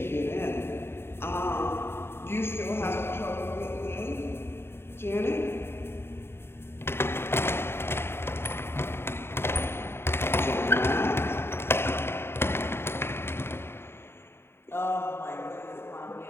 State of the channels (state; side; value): late; right; 0.11 ms